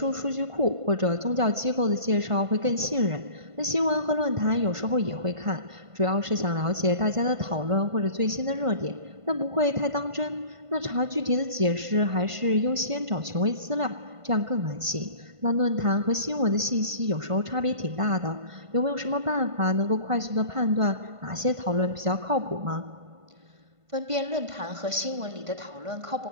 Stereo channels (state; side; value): late; left; 1.5 ms